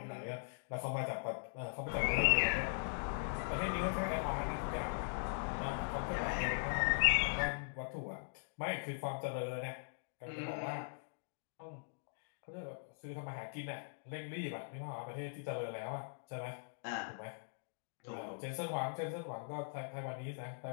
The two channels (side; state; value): right; silent; digital silence